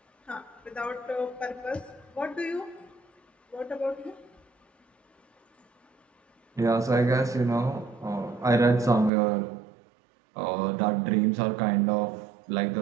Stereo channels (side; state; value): left; drops out; at 9.1 s